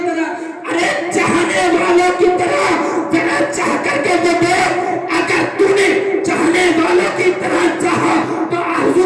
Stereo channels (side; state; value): both; identical; correlation 1.00